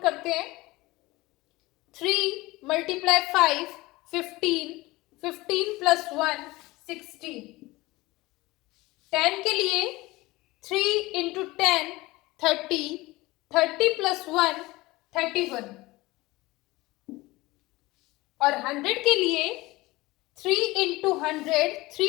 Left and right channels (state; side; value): quieter; right; 20.5 dB